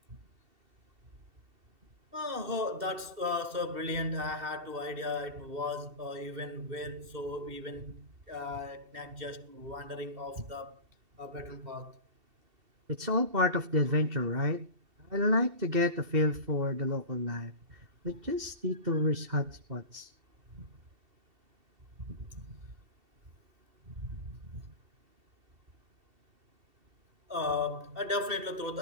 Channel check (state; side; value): late; left; 2.7 ms